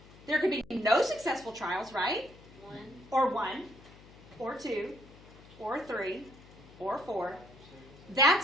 There could be no successful trials, right? 1. Or 1, or 2, or 3, or 4.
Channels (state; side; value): noise; left; hum, 21 dB below the sound